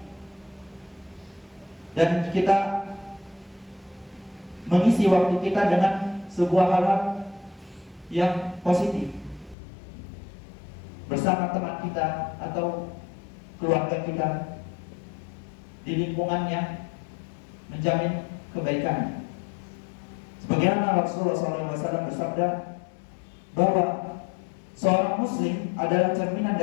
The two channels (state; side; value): drops out; right; at 9.6 s